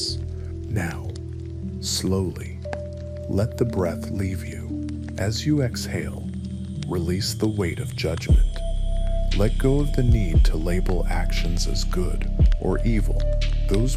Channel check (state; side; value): identical; both; correlation 1.00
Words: Now, slowly, let the breath leave you. As you exhale, release the weight of judgment. Let go of the need to label actions as good or evil.